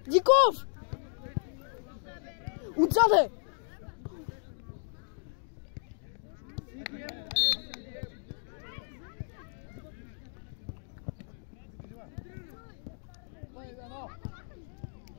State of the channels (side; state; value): right; silent; 55 dB below the other